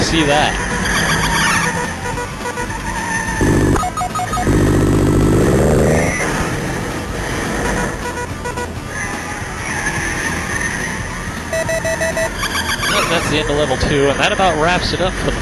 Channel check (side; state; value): both; identical; correlation 1.00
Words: that? Yep, that's the end of level 2, and that about wraps it up for the